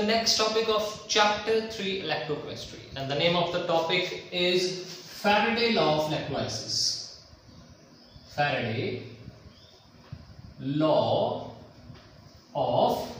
next topic of chapter 3 electrochemistry, and the name of the topic is Faraday law of electrolysis. Faraday law of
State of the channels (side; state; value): both; identical; correlation 1.00